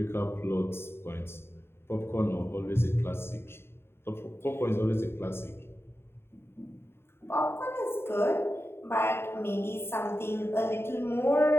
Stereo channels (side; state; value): right; late; 0.11 ms